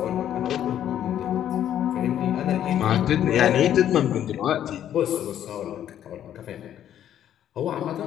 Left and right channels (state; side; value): quieter; right; 10.7 dB